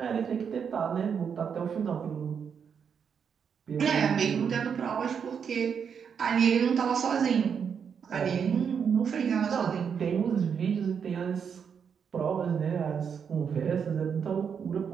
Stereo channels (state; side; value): quieter; left; 7.0 dB